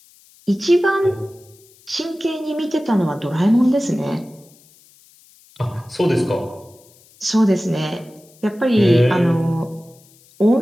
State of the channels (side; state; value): left; noise; hiss, 28 dB below the sound